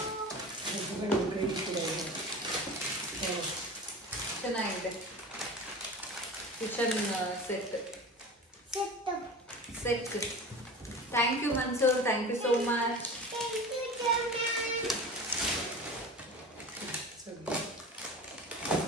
ಚೆನ್ನಾಗಿದೆ kitchen set. Thank you Mansoor, thank you so much.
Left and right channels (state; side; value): normal; both; correlation 0.34